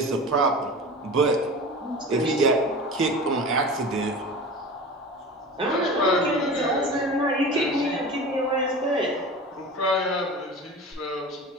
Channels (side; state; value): both; normal; correlation 0.34